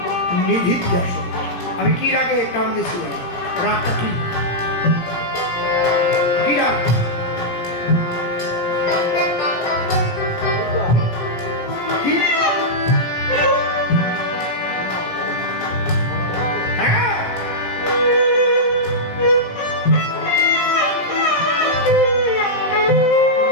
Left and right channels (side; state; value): right; late; 17 ms